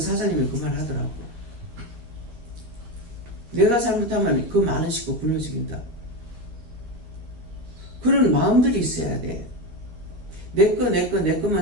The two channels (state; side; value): late; left; 12 ms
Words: 그 말 하더라고. 내가 잘못하면 그 많은 식구 굶어 죽인다. 그런 마음들이 있어야 돼. 내